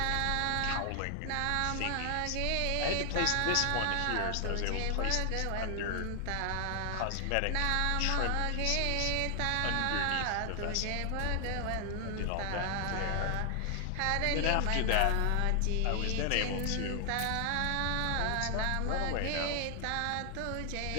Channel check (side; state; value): both; different; correlation 0.00